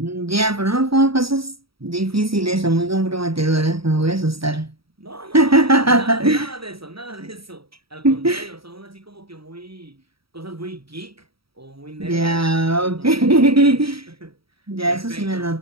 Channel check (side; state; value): left; late; 0.75 ms